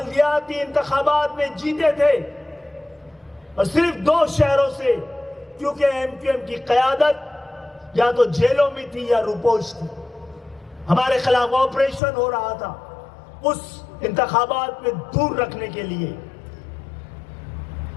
انتخابات میں جیتے تھے اور صرف 2 شہروں سے، کیونکہ ایم کیو ایم کی قیادت یا تو جیلوں میں تھی یا روپوش تھی، ہمارے خلاف آپریشن ہو رہا تھا اس انتخابات میں دور رکھنے کے لیے،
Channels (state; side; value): drops out; right; at 12.0 s